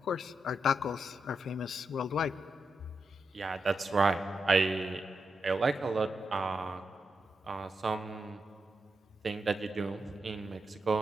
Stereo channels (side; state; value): both; normal; correlation 0.86